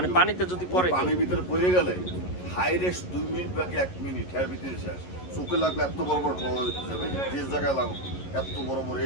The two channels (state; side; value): late; right; 11 ms